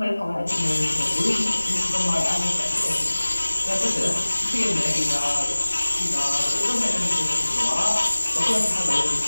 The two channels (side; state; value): both; inverted; correlation -1.00